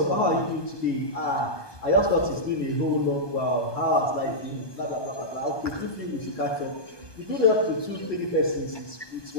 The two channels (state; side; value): late; right; 1.2 ms